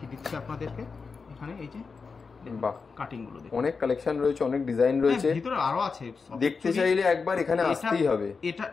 দিচ্ছি আপনাদেরকে। এখানে এই যে বাহ, কাটিং গুলো দেখুন, অনেক কালেকশন রয়েছে, অনেক ডিজাইন রয়েছে, ভিতরে আরো আছে। দেখতে চাইলে একবার এখানে আসতেই হবে।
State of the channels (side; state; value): right; quieter; 4.9 dB